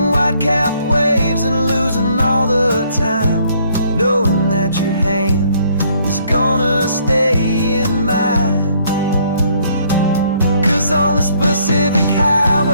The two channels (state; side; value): inverted; both; correlation -0.66